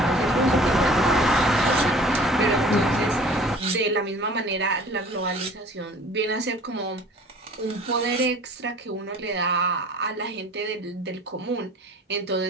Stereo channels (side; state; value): both; normal; correlation 0.48